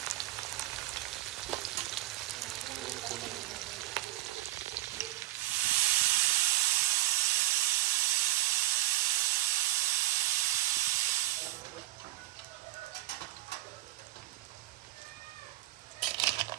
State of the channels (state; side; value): quieter; left; 16.3 dB